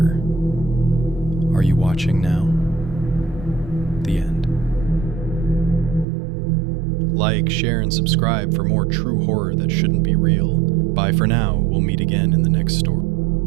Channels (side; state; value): left; drops out; at 6.1 s